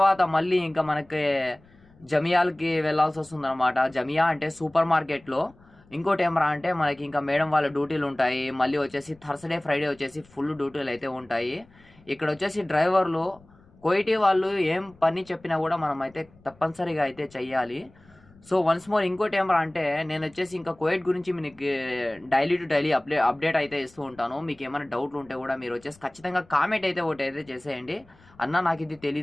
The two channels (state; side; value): noise; left; rumble, 28 dB below the sound